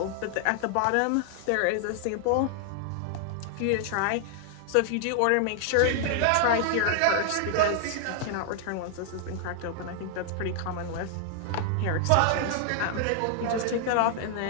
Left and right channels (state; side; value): different; both; correlation 0.00